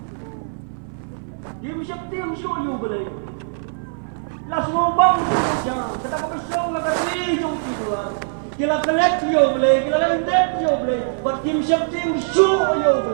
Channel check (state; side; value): silent; left; 58 dB below the other